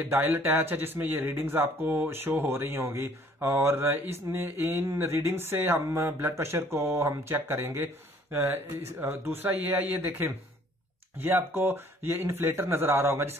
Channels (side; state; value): both; normal; correlation 0.58